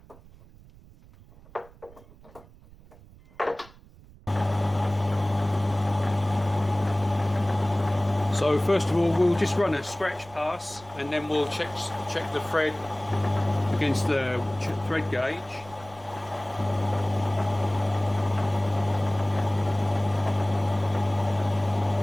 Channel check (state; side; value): noise; right; rumble, 23 dB below the sound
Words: So first of all, we'll just run a scratch pass, and then we'll check the thread against the thread gauge.